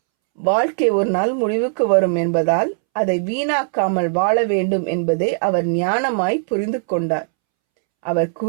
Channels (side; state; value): left; silent; 67 dB below the other